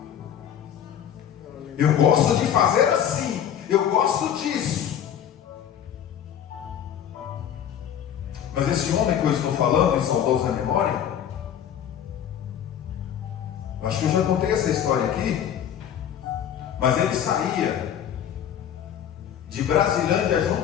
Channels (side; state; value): right; quieter; 9.5 dB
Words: Eu gosto de fazer assim, eu gosto disso. Mas esse homem que eu estou falando, em saudosa memória, acho que eu já contei essa história aqui, mas ele saía de Brasilândia a